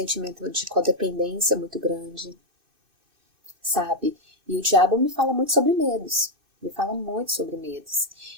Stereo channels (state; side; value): late; left; 2.6 ms